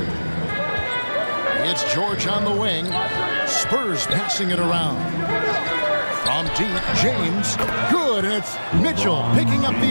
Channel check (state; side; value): inverted; both; correlation -1.00